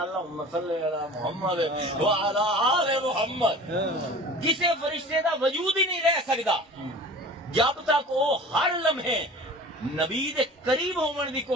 صلی علی محمد وعلی آل محمد کسے فرشتے دا وجود ہی نہیں رہ سکدا جب تک وہ ہر لمحے نبی دے قریب ہون دی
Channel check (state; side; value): normal; both; correlation 0.41